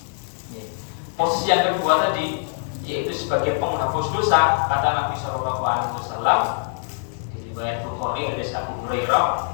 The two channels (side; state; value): right; silent; digital silence